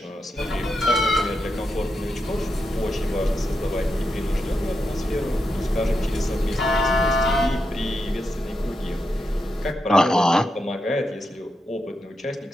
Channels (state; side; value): normal; both; correlation 0.85